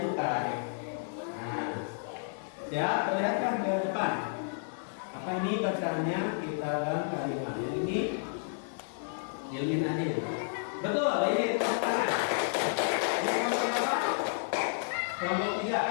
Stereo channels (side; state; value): right; silent; 57 dB below the other